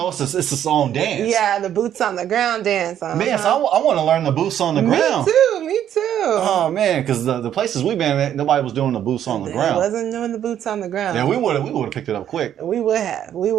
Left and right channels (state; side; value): quieter; left; 10.3 dB